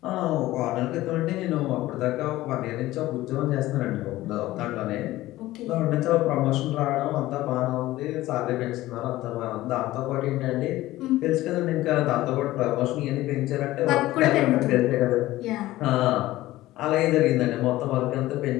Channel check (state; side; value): quieter; right; 16.6 dB